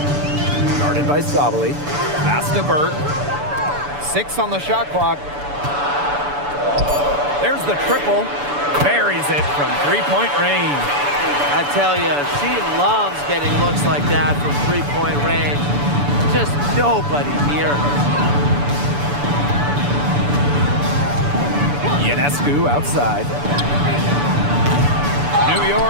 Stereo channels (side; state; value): left; late; 6.9 ms